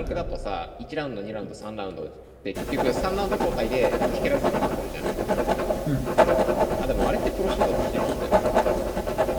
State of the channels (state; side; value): identical; both; correlation 1.00